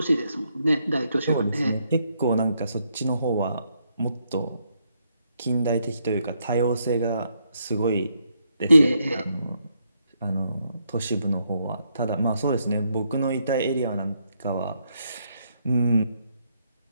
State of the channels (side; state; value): both; inverted; correlation -0.76